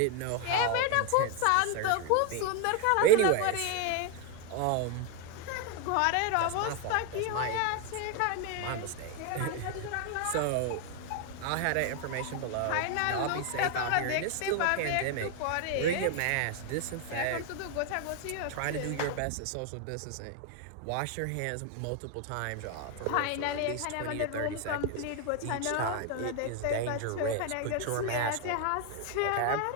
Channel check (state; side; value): different; both; correlation 0.01